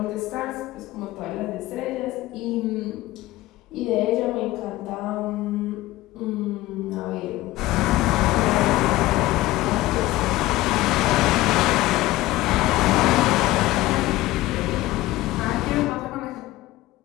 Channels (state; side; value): quieter; right; 17.4 dB